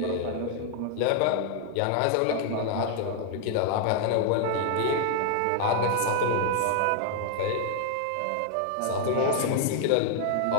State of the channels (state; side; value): different; both; correlation 0.00